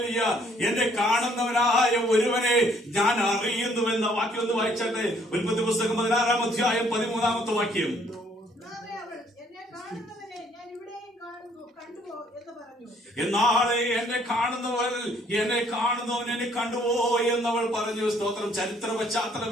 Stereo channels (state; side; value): normal; both; correlation 0.63